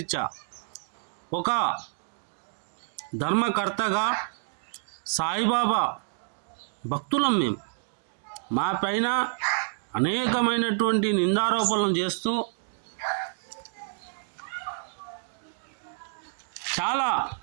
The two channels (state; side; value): silent; left; digital silence